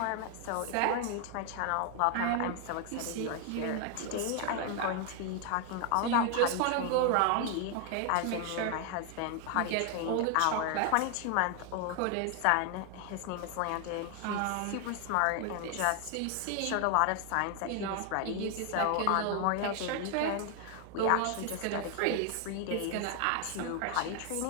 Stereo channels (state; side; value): different; both; correlation 0.00